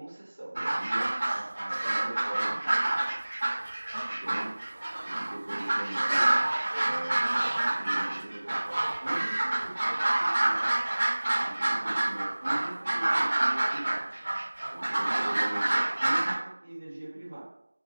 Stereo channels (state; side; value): inverted; both; correlation -1.00